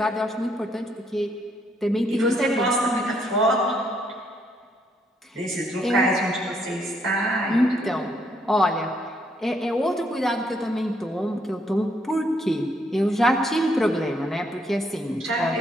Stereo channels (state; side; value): normal; both; correlation 0.71